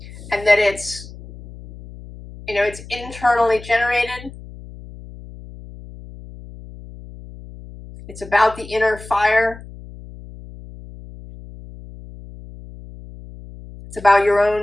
And that it's, you know, it's internally generated. It's about the inner fire. It's about your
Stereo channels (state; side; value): noise; left; hum, 17 dB below the sound